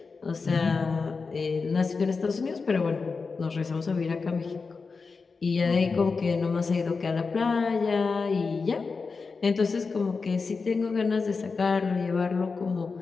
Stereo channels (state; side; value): quieter; right; 4.6 dB